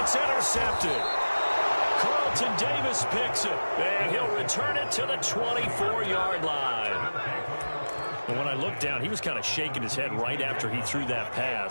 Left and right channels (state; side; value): inverted; both; correlation -1.00